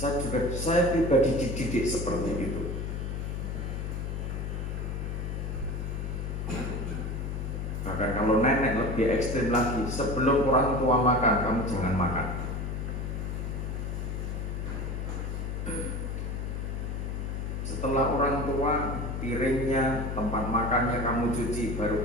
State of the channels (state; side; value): noise; left; hum, 3 dB below the sound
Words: Saya pribadi dididik seperti itu. Bahkan kalau nenek lebih ekstrim lagi, sebelum orang tua makan, kamu jangan makan. Setelah orang tua, piringnya, tempat makannya kamu cuci, baru